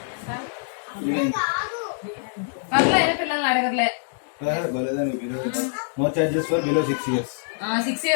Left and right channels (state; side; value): silent; right; digital silence